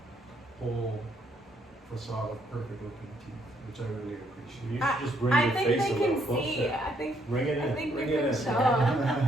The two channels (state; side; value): normal; both; correlation 0.71